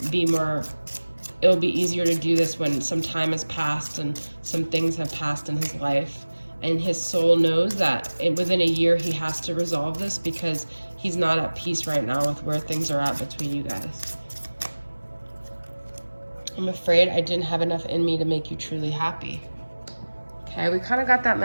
be more, it'll be easier to do this when some time has passed and some things have passed in his life. And his soul knows that within a year he has to resolve this because he's not at peace right now with where things are at between you guys. I'm afraid I didn't have enough in me to make you truly happy. Okay, we kind of got that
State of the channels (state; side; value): inverted; both; correlation -1.00